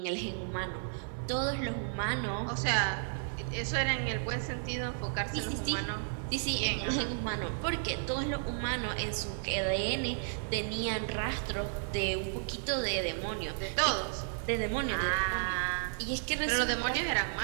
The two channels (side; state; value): left; silent; 56 dB below the other